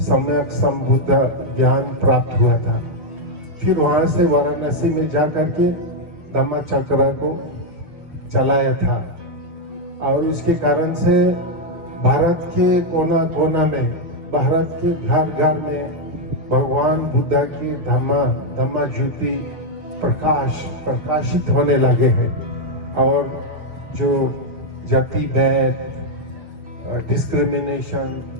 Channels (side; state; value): left; late; 6.4 ms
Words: सम्यक संबुद्ध ज्ञान प्राप्त हुआ था। फिर वहां से वाराणसी में जाकर के धम्म चक्र को चलाया था और उसके कारण से भारत के कोना कोना में, भारत के घर घर में भगवान बुद्ध की धम्मा ज्योति प्रकाशित होने लगे हैं और जो जाति भेद, डिस्क्रिमिनेशन,